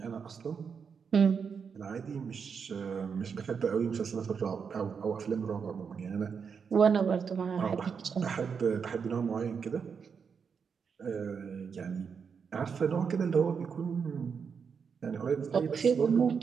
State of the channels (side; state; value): left; quieter; 6.3 dB